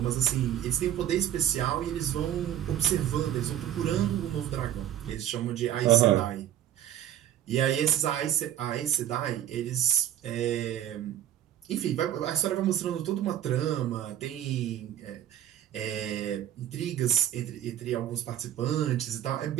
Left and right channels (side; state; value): left; quieter; 11.2 dB